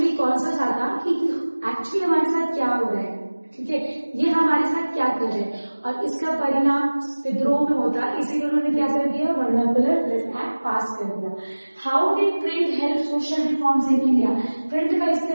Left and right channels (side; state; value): both; inverted; correlation -1.00